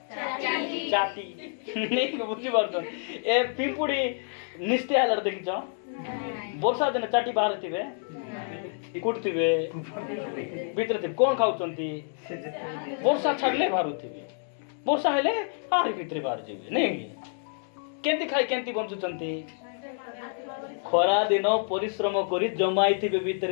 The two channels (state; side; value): silent; right; 59 dB below the other